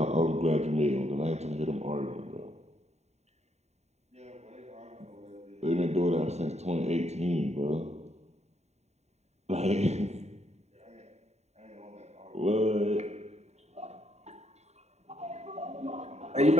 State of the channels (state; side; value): late; left; 0.32 ms